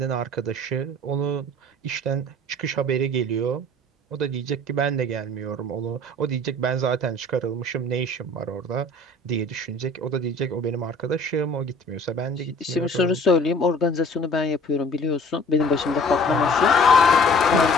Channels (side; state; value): both; normal; correlation 0.49